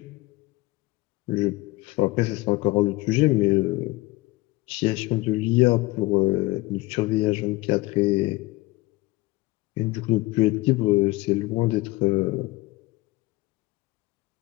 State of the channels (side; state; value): right; quieter; 21.0 dB